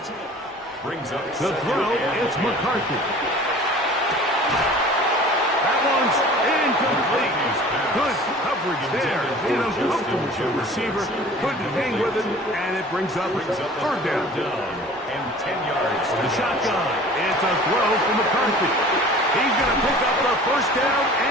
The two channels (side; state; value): both; normal; correlation 0.45